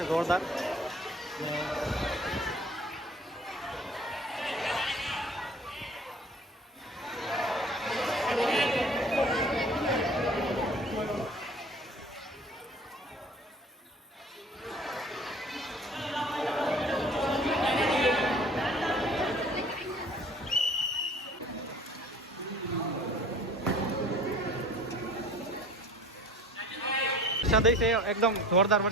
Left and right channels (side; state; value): both; normal; correlation 0.47